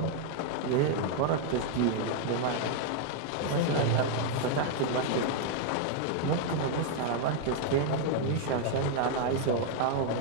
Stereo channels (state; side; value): different; both; correlation 0.00